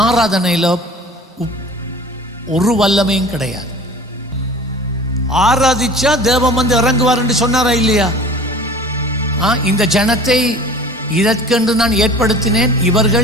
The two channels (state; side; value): normal; both; correlation 0.42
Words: ஆராதனையில ஒரு வல்லமையும் கிடையாது. ஆராதிச்சா தேவன் வந்து இறங்குவார் என்று சொன்னாரா இல்லையா? இந்த ஜனத்தை இதற்கென்று நான் ஏற்படுத்தினேன்,